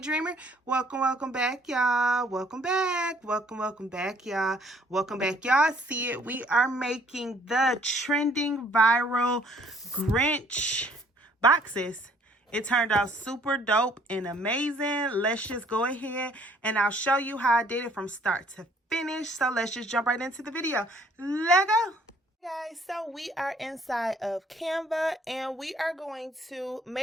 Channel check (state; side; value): normal; both; correlation 0.60